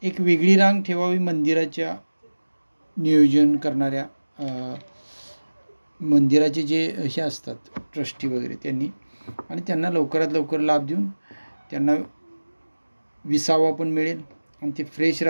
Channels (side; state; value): both; inverted; correlation -1.00